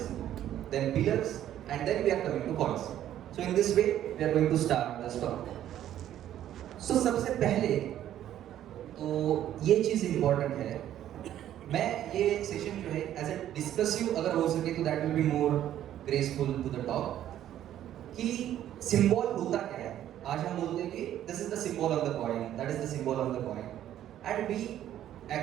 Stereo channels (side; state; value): left; quieter; 11.7 dB